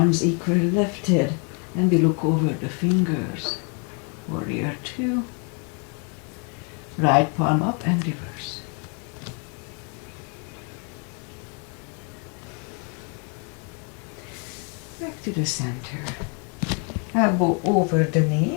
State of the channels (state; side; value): quieter; right; 37.3 dB